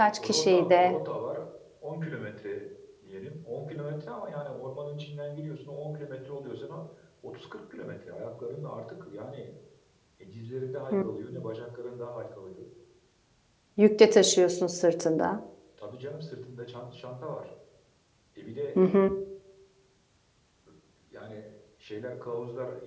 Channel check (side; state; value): both; identical; correlation 1.00